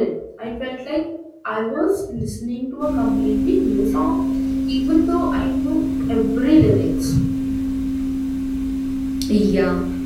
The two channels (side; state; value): both; identical; correlation 1.00